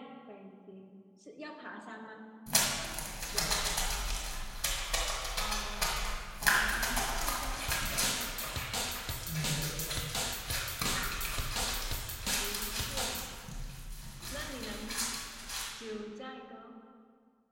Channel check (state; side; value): identical; both; correlation 1.00